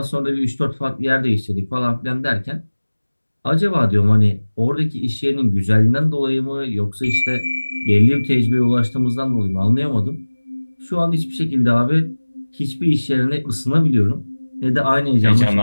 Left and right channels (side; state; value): both; inverted; correlation -1.00